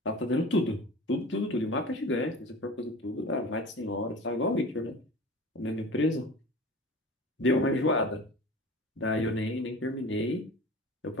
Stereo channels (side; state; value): both; normal; correlation 0.37